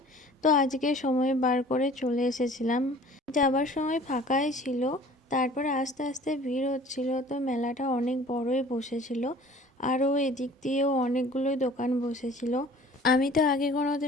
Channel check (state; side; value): normal; both; correlation 0.48